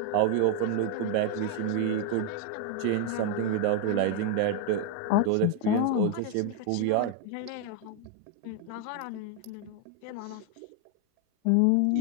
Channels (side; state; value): both; different; correlation 0.01